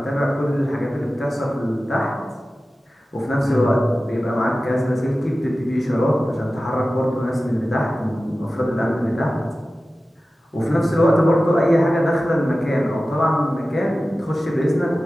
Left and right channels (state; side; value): normal; both; correlation 0.95